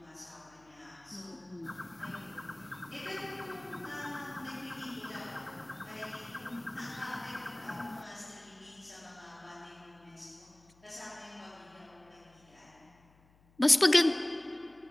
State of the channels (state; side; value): noise; left; hum, 29 dB below the sound